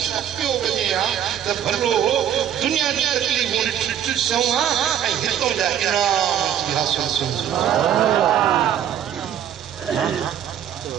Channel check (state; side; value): quieter; left; 9.8 dB